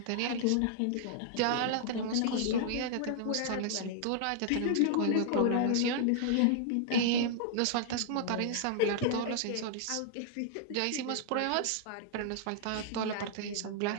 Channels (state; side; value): different; both; correlation -0.01